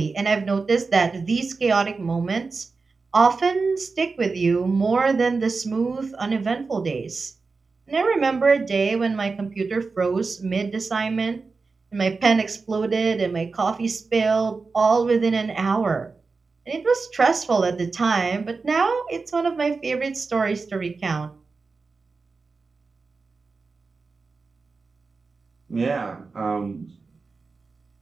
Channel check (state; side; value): quieter; left; 4.3 dB